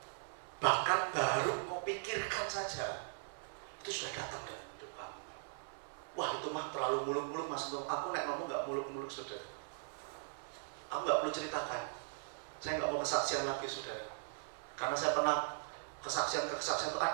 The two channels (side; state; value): left; silent; digital silence